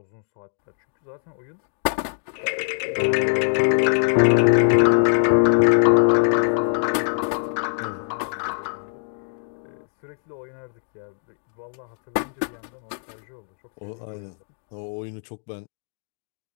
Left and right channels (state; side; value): silent; right; digital silence